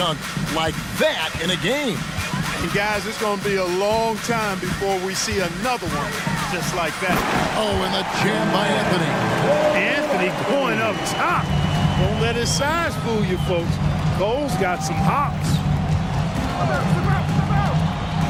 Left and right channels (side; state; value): both; identical; correlation 1.00